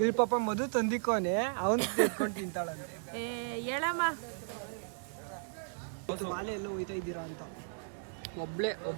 ಪಾಪ ಮಧು ತಂದಿಕೋನೆ ಅವನು ತೆಗೆದ್ಕೊಂಡು ತಿಂತಾಳಂತೆ. ಹೇಳಮ್ಮ, ವಾಲೆ ಎಲ್ಲ ಹೋಯ್ತಾ ಇದ್ದೀರಾ ಅಂತ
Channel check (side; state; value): left; silent; digital silence